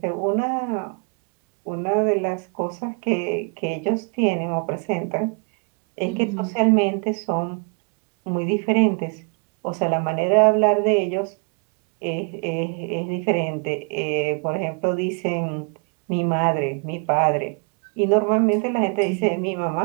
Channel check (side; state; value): left; quieter; 37.3 dB